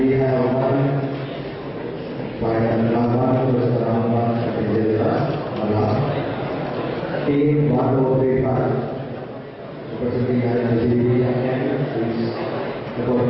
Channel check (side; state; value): both; identical; correlation 1.00